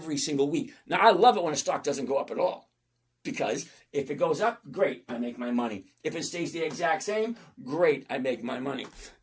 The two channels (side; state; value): both; identical; correlation 1.00